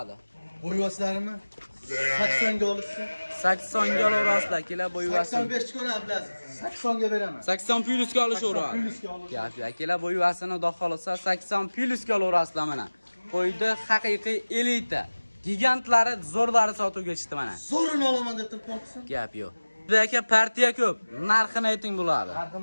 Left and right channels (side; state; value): both; inverted; correlation -1.00